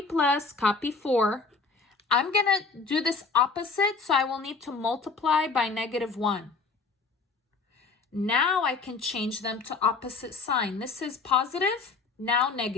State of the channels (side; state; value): right; quieter; 4.4 dB